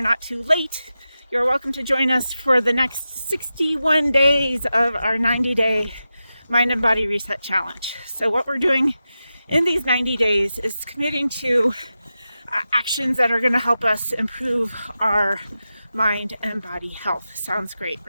not too late. You're welcome to join us for the next 61 days of our 90-day mind and body reset challenge. So what we're doing in these 90 days is committing to actions that are going to help us improve our mind and body health. Sounds great,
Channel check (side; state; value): both; inverted; correlation -0.92